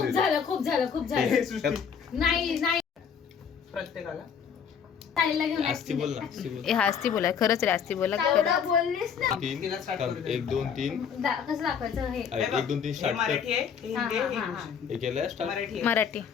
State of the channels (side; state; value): right; quieter; 7.1 dB